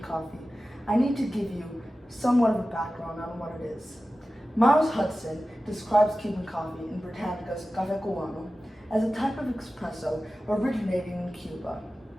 coffee, I need to give you somewhat of a background on what it is. Miles Hudson describes Cuban coffee in Britannica's Café Cubano as a type of espresso originating in Cuba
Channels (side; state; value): both; normal; correlation 0.95